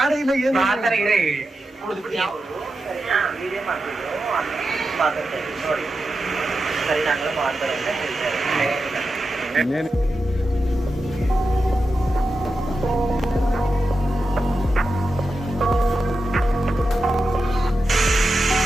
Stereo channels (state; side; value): normal; both; correlation 0.89